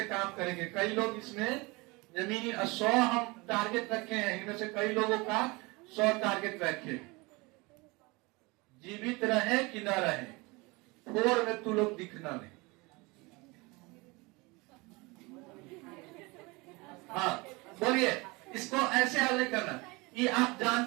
काम करेंगे। कई लोग इसमें जमीनी 100 हम टारगेट रखे हैं, इनमें से कई लोगों का 100 टारगेट रखे। जीवित रहे कि न रहे, 4 में तू लोग दिखना नहीं। हाँ बोलिए, इसको ऐसे हल नहीं करना। ये आप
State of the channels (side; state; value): left; quieter; 25.2 dB